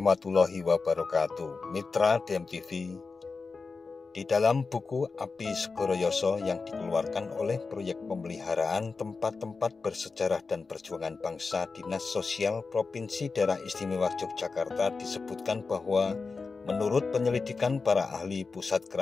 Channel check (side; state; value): right; quieter; 4.4 dB